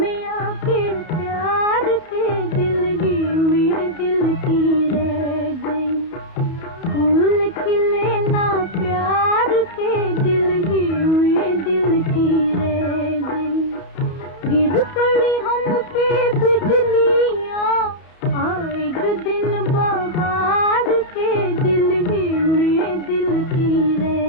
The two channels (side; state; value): right; late; 31 ms